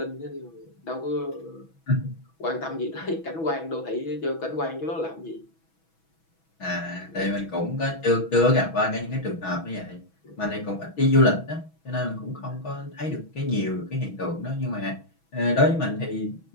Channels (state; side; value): late; right; 6.1 ms